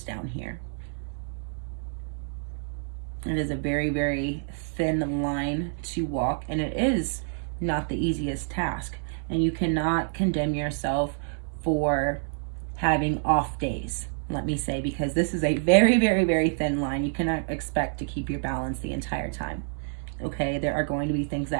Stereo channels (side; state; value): left; silent; 58 dB below the other